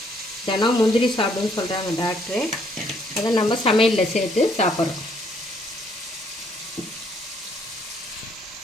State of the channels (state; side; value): normal; both; correlation 0.67